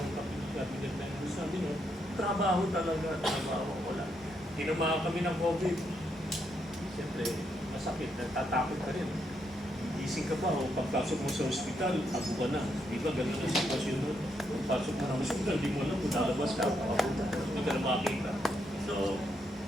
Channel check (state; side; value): normal; both; correlation 0.78